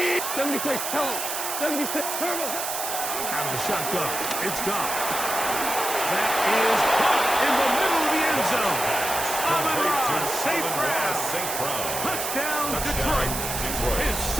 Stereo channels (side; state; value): right; noise; hiss, 3 dB below the sound